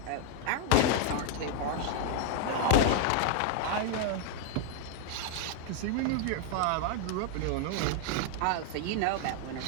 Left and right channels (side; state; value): both; different; correlation 0.00